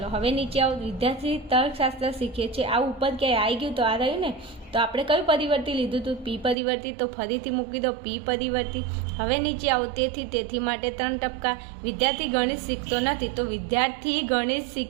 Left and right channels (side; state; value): left; drops out; at 6.6 s